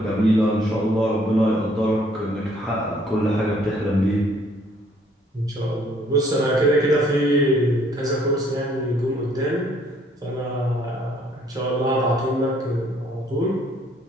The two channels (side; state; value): both; normal; correlation 0.63